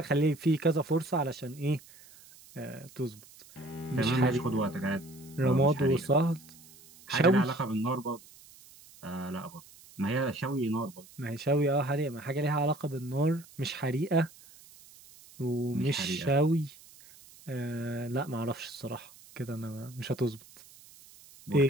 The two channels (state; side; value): noise; right; hiss, 22 dB below the sound